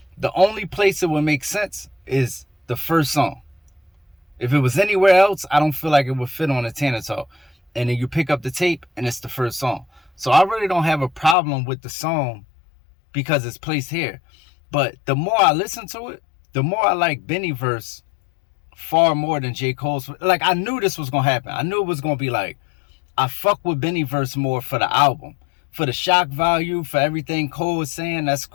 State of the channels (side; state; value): right; drops out; at 11.4 s